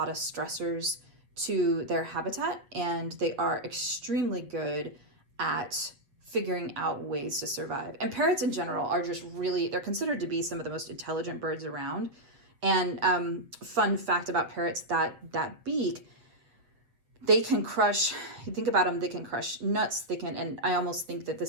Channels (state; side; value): late; left; 8.0 ms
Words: of stressors to their habitat, and they are extremely good at figuring out ways to survive. And parrots in general are just really, they're considered to be some of the most intelligent birds around. And fun fact about parrots, that beak, they can crush, you think about them, they can crush nuts, they can, and I almost think that